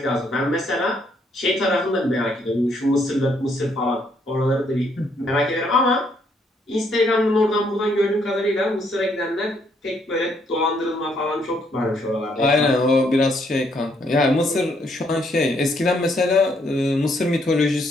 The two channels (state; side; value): normal; both; correlation 0.71